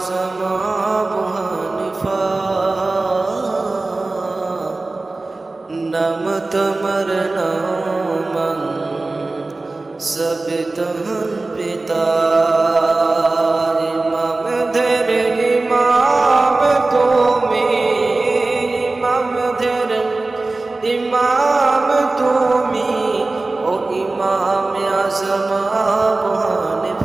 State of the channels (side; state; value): left; quieter; 3.2 dB